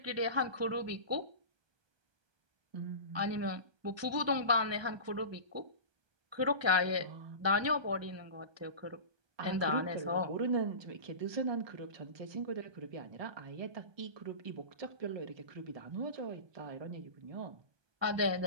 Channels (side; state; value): left; late; 1.2 ms